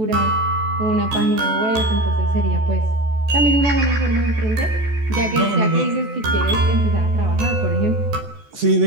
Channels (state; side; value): late; left; 14 ms